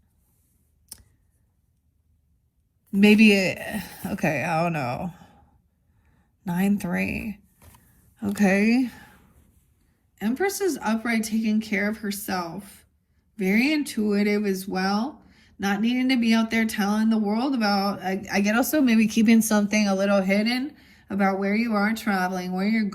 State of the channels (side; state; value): both; identical; correlation 1.00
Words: Maybe, okay, I don't know. 9-3. Okay. Empress is upright, taking care of herself. Very intuitive as well. Not needing to be out there telling the world about, I get also maybe keeping something a little hidden about where you are traveling, where you're